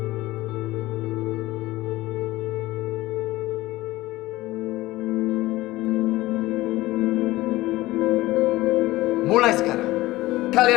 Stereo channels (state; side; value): quieter; right; 18.1 dB